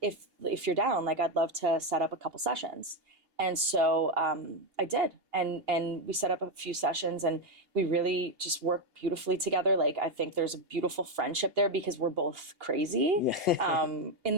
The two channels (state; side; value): late; left; 2.8 ms